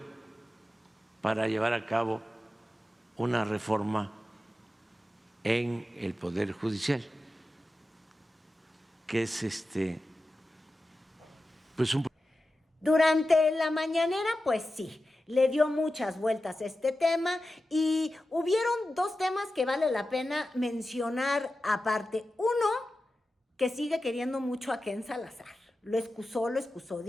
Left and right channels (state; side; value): normal; both; correlation 0.93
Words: para llevar a cabo una reforma en el Poder Judicial, que es pues un... Durante la mañanera, pues sí, le dio muchas vueltas a este tema y hubieron dos temas que vale la pena mencionar aparte. Uno, que sigue queriendo mucho a Ken Salazar. Lo excusó,